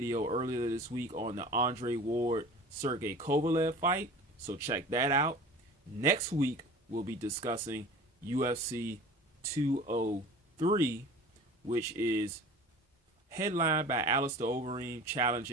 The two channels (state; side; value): normal; both; correlation 0.40